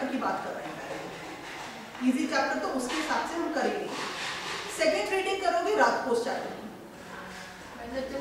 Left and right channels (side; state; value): both; identical; correlation 1.00